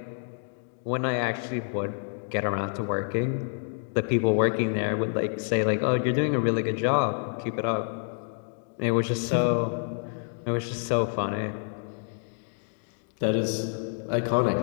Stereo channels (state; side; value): silent; right; digital silence